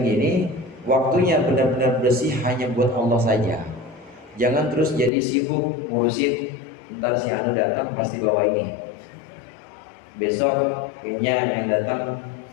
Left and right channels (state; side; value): drops out; right; at 5.1 s